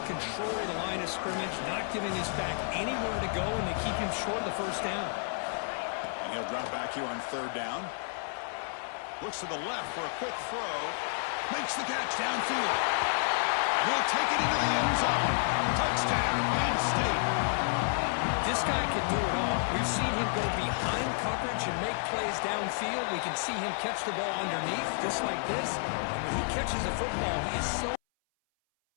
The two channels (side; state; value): right; silent; 57 dB below the other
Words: control of the line of scrimmage, not giving this back anywhere to go, and they keep him short of the first down. And he'll drop back here on third down. Looks to the left for a quick throw. Makes the catch downfield. And he'll take it into the end zone. Touchdown, Penn State. This guy can do it all. We've seen him go behind coverage and make plays downfield. We can see him catch the ball underneath, just like this. And when he catches a football, he is so